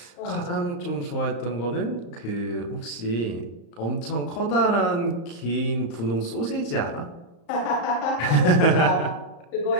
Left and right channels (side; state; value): right; late; 35 ms